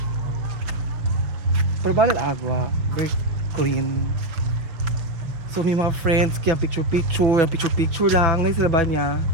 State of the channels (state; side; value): late; left; 5.8 ms